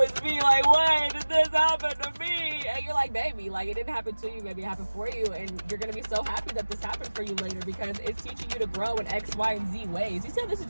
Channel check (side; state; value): both; inverted; correlation -1.00